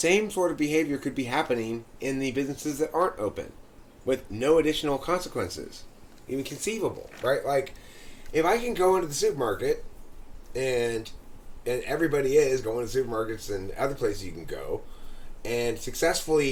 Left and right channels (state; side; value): identical; both; correlation 1.00